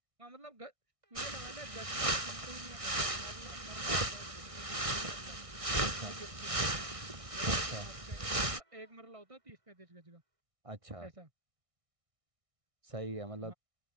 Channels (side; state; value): left; late; 1.6 ms